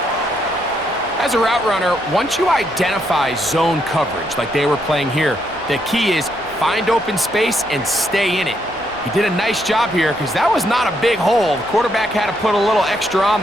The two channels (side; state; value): both; normal; correlation 0.76